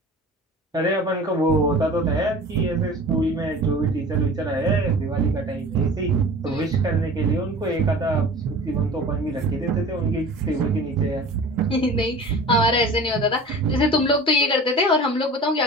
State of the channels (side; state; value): both; normal; correlation 0.39